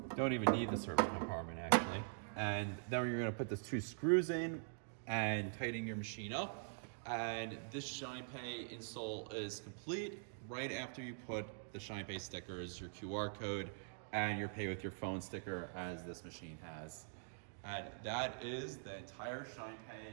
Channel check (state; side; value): silent; left; digital silence